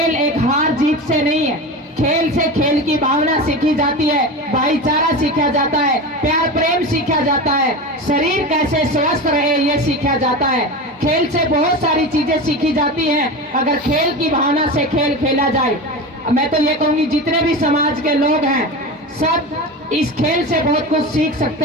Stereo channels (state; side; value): normal; both; correlation 0.26